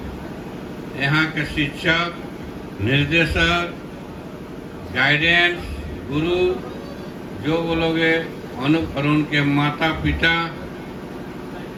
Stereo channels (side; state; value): both; identical; correlation 1.00